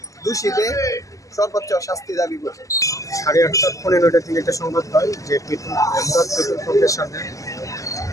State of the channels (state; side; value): late; right; 0.16 ms